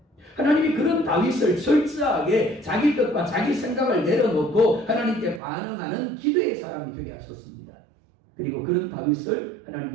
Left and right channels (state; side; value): drops out; left; at 5.4 s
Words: 하나님이 그런 다윗을 철저하게 자기 뜻과 자기 생각을 내려놓고 하나님께 반응하는 기도의 사람이 되게 하셨습니다. 그리고 그런 다윗을